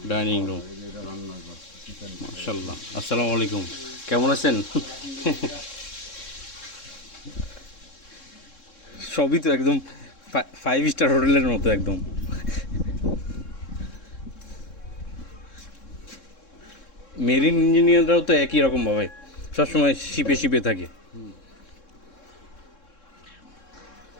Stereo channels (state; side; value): late; right; 3.7 ms